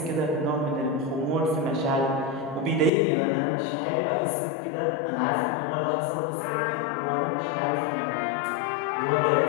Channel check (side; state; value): right; drops out; at 2.9 s